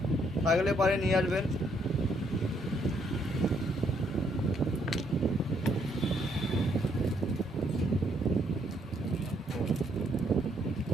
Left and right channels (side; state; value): both; normal; correlation 0.71